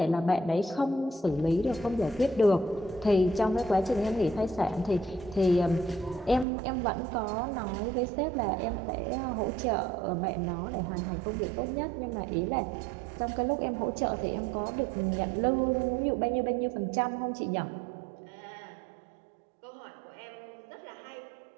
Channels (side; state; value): left; drops out; at 6.5 s